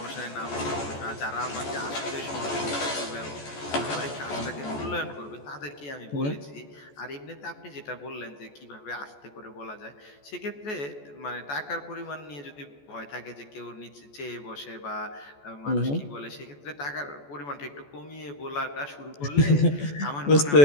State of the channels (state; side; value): late; right; 14 ms